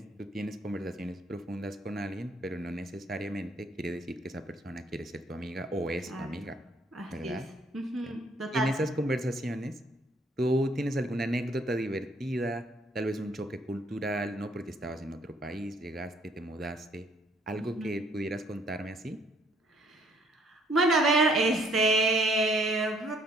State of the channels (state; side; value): normal; both; correlation 0.64